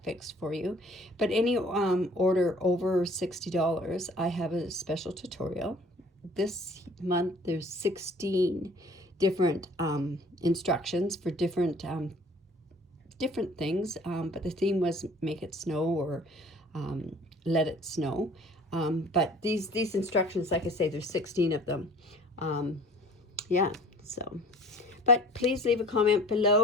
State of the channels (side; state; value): both; normal; correlation 0.50